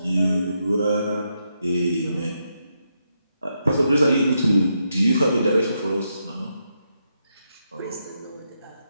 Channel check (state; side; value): inverted; both; correlation -0.82